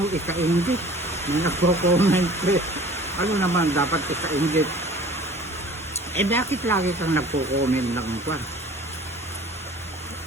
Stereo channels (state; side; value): normal; both; correlation 0.46